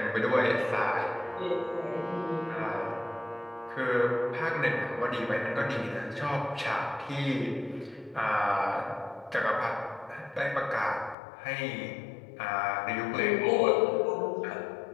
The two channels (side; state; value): right; drops out; at 11.2 s